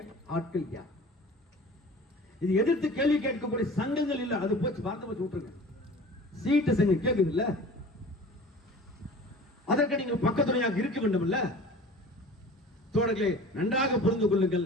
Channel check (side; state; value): both; normal; correlation 0.41